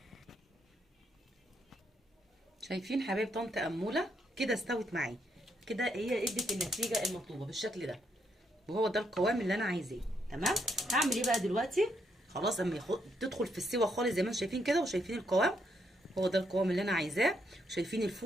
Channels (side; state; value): both; normal; correlation 0.76